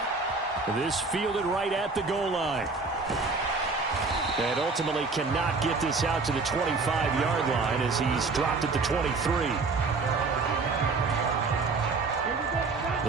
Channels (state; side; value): quieter; left; 4.1 dB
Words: This fielded right at the goal line. And ultimately cannot get this out to the 25-yard line as he's dropped at the 23.